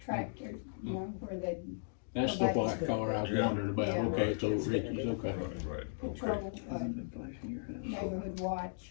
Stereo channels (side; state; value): right; silent; digital silence